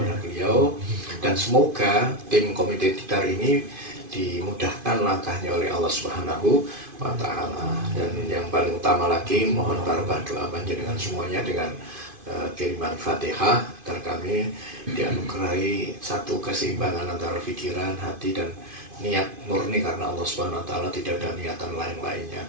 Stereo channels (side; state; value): left; late; 2.5 ms